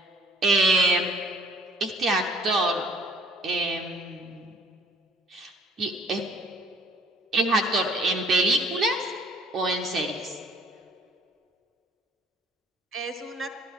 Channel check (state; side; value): normal; both; correlation 0.55